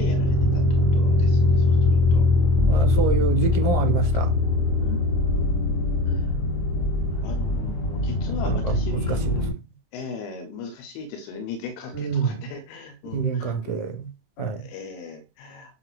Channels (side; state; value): right; late; 24 ms